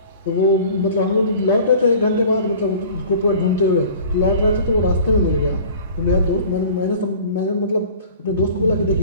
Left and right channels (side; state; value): both; inverted; correlation -0.45